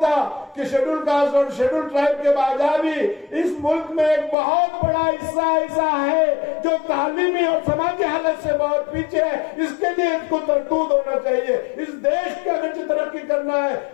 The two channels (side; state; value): right; drops out; at 4.4 s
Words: कि शेड्यूल कास्ट और शेड्यूल ट्राइब के बाद भी इस मुल्क में एक बहुत बड़ा हिस्सा ऐसा है जो तालीमी और समाजी हालत से बहुत पीछे है। इसके लिए इनको तरतूद होना चाहिए। इस देश का अगर तरक्की करना है